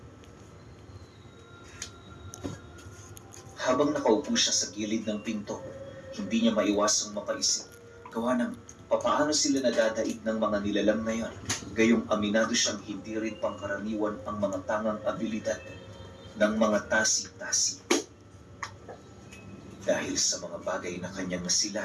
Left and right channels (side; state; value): both; identical; correlation 1.00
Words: Habang nakaupo siya sa gilid ng pinto, hindi niya maiwasang mapaisip gawa ng papaano sila nadadaig ng mga nilalang na yon, gayong aminado siyang hindi rin pangkaraniwan ang mga tangang abilidad ng mga tasi-tasi. Dahil sa mga bagay na kanyang